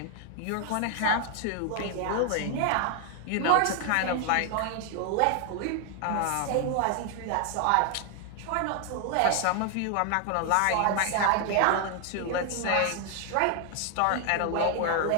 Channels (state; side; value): different; both; correlation 0.00